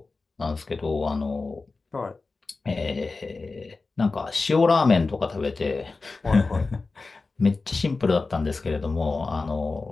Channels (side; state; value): right; quieter; 3.8 dB